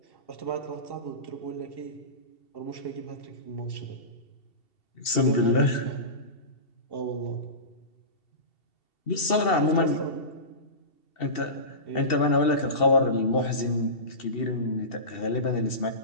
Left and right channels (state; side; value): late; right; 2.7 ms